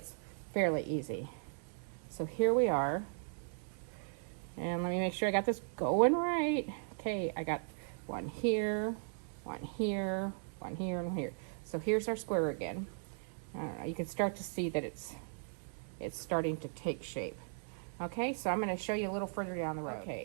fairly easy. So here we are. And let me make sure I got this going right. Okay, I got one here, one here, one here, and one here. So here's our square again. I don't know, you can start to see that it's starting to take shape. Okay, so I'm gonna show you a little further down the road.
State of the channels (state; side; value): silent; left; digital silence